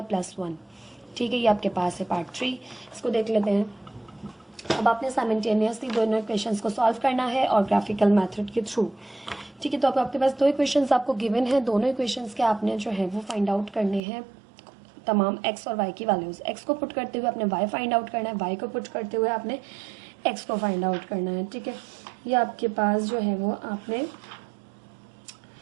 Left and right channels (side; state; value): left; drops out; at 14.0 s